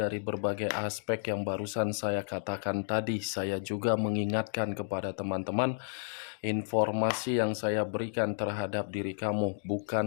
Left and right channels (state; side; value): silent; right; digital silence